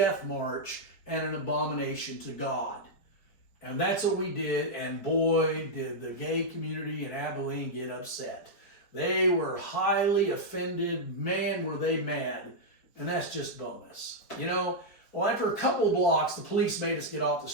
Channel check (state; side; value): late; right; 4.9 ms